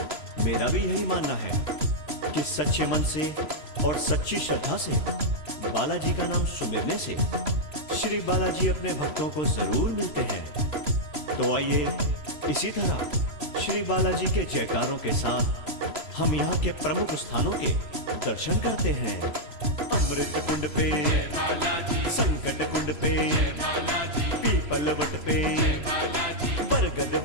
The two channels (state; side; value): late; left; 3.0 ms